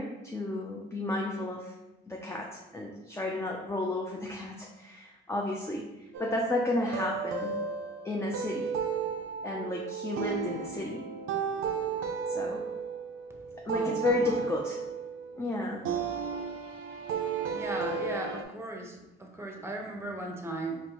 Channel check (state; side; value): normal; both; correlation 0.42